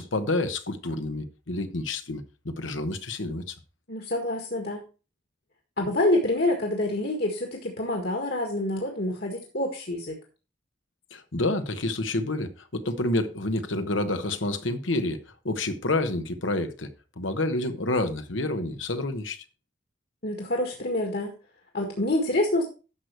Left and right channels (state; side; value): normal; both; correlation 0.26